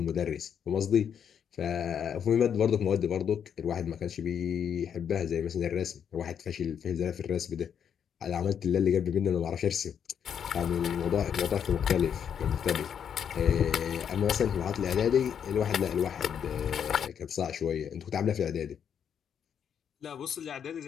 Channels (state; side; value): quieter; right; 8.2 dB